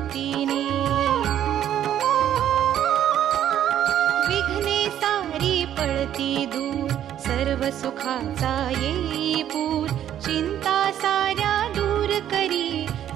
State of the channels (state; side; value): quieter; left; 10.8 dB